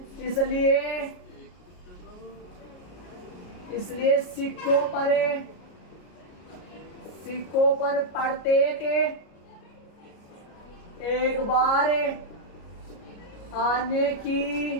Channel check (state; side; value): late; right; 33 ms